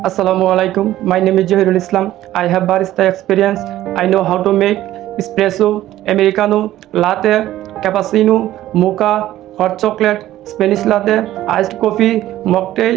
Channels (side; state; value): left; quieter; 14.1 dB